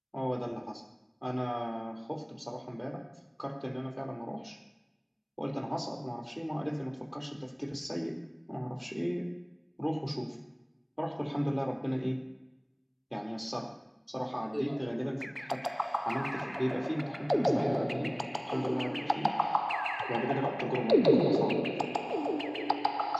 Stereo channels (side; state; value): both; identical; correlation 1.00